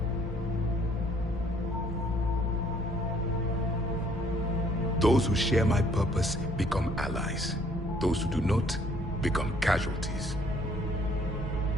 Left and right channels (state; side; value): normal; both; correlation 0.62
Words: Those who share my purpose become allies. Those who do not become casualties.